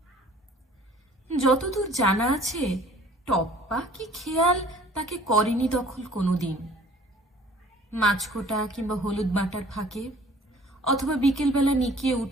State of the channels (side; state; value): both; normal; correlation 0.52